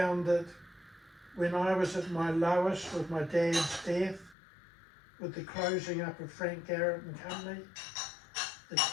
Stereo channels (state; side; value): drops out; right; at 4.4 s